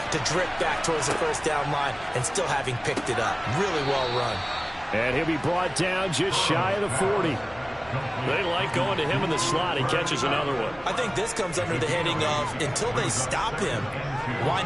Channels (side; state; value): left; noise; hum, 23 dB below the sound